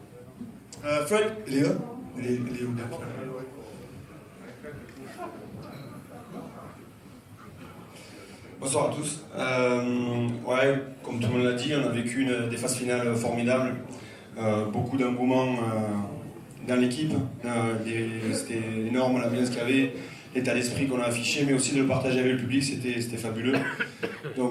Fred, il est là? Il est où? Bonsoir à tous. Ouais, comme tout le monde l'a dit, on a vécu des phases finales formidables, beaucoup d'engouement dans l'équipe. C'était énorme l'ambiance qu'il y avait, l'état d'esprit qu'on a affiché, mais aussi de le partager avec le public, c'était fabuleux.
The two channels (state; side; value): identical; both; correlation 1.00